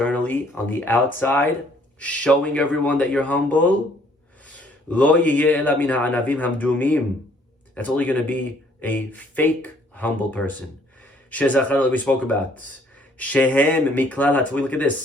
on the outside, showing everyone that you're humble, that's only going to be a fake humble person. We spoke about. Look at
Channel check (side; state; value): both; normal; correlation 0.62